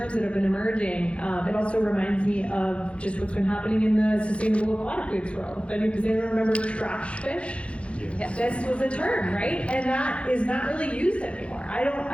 that have been emerging. It also reminds me of just what's been happening in the sustainable aquatic foods world. Does anyone remember trash fish? Yes. This was a term, right? And that is not really used anymore. I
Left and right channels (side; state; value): right; late; 0.060 ms